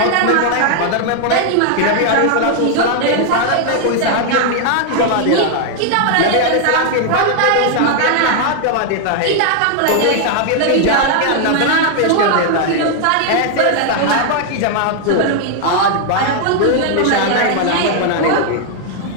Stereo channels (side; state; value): both; different; correlation 0.00